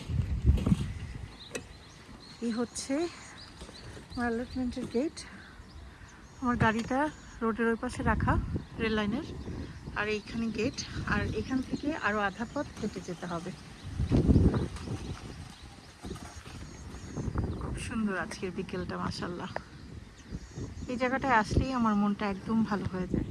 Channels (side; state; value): both; identical; correlation 1.00